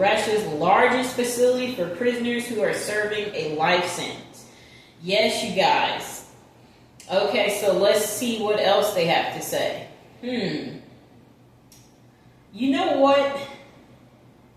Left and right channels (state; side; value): identical; both; correlation 1.00